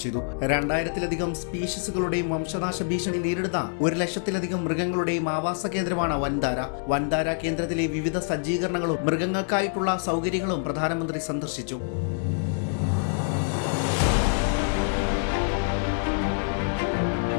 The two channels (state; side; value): silent; right; digital silence